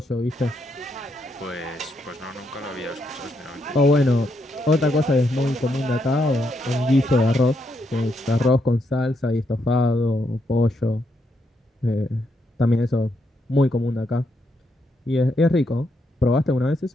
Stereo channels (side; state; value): both; normal; correlation 0.79